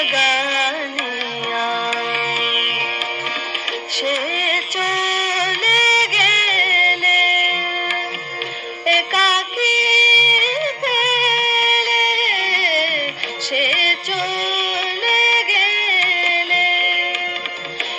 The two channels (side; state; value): both; identical; correlation 1.00